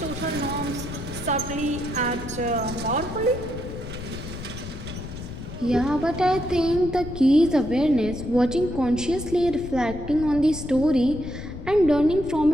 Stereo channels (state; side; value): noise; left; rumble, 10 dB below the sound